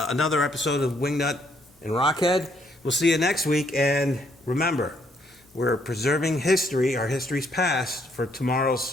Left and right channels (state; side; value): normal; both; correlation 0.70